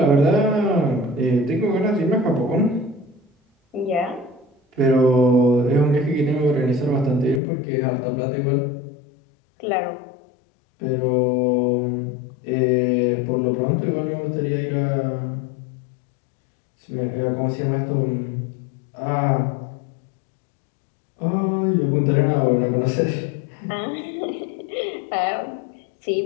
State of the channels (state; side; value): drops out; right; at 7.4 s